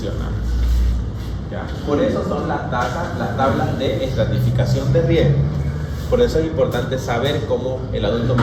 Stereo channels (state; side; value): identical; both; correlation 1.00